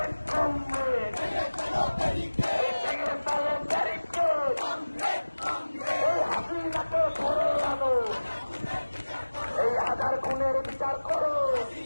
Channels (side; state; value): both; inverted; correlation -1.00